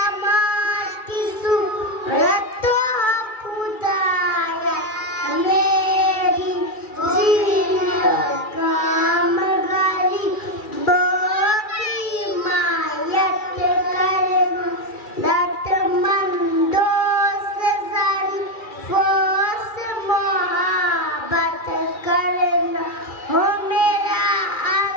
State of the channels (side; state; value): right; late; 2.4 ms